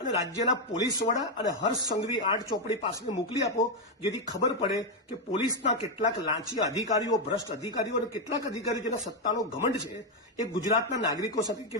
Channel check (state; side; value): normal; both; correlation 0.04